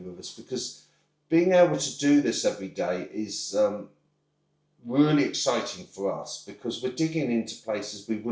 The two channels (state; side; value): identical; both; correlation 1.00